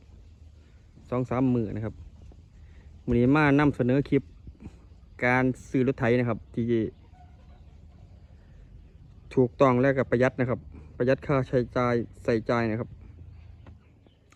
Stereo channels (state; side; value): identical; both; correlation 1.00